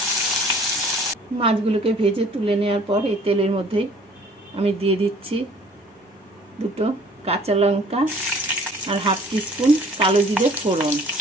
মাছগুলোকে ভেজে তুলে নেওয়ার পর এই তেলের মধ্যেই আমি দিয়ে দিচ্ছি দুটো কাঁচা লঙ্কা আর হাফ টিস্পুন কালো জিরে ফোড়ন।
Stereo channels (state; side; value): normal; both; correlation 0.53